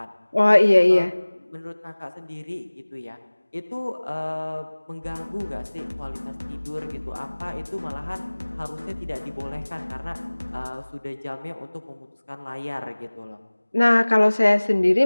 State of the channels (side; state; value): both; inverted; correlation -1.00